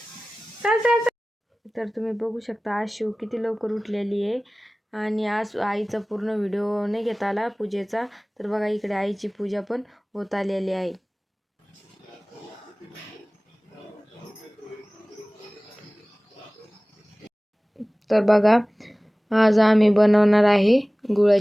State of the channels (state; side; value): normal; both; correlation 0.98